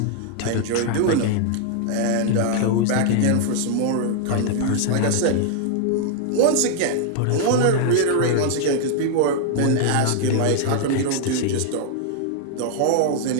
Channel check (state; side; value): different; both; correlation 0.00